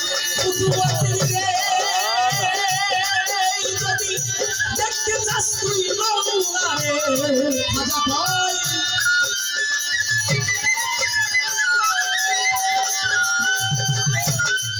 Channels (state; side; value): identical; both; correlation 1.00